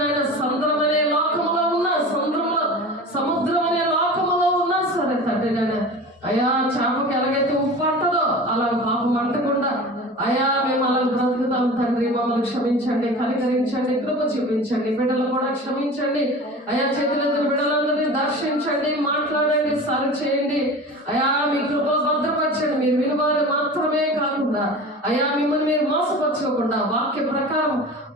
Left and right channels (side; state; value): both; normal; correlation 0.35